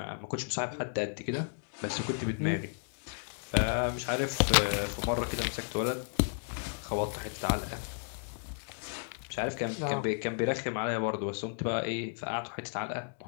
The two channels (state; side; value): silent; right; digital silence